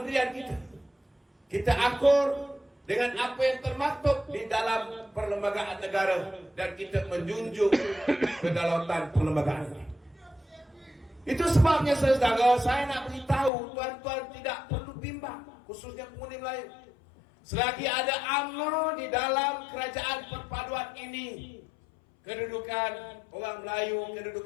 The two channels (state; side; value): drops out; right; at 13.5 s